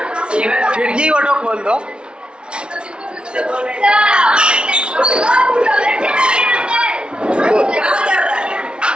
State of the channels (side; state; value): left; late; 0.056 ms